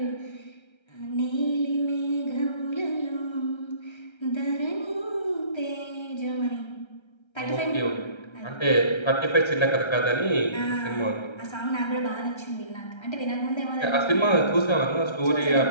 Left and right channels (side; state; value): right; late; 1.3 ms